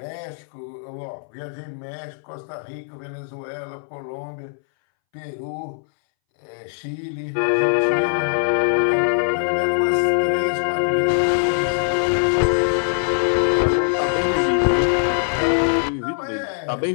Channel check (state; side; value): silent; right; 63 dB below the other